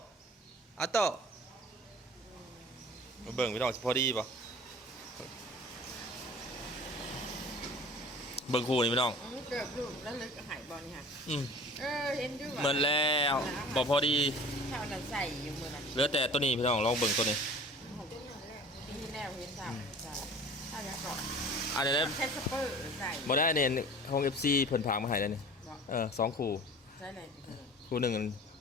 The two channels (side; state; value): both; normal; correlation 0.43